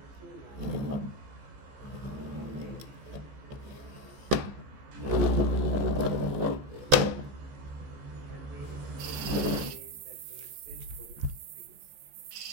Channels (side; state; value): left; late; 15 ms